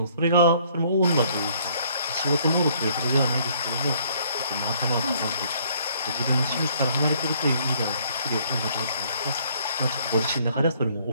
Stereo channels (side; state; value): both; inverted; correlation -0.63